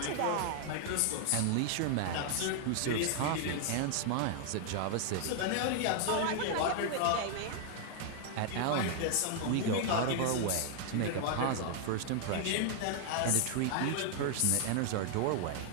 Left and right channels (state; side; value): different; both; correlation 0.00